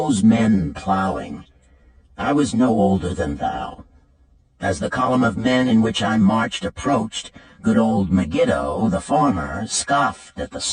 men plowing. I was no older than thou. As the column of men in which I marched approached, good old Megiddo, the farmer, scoffed at the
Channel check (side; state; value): both; identical; correlation 1.00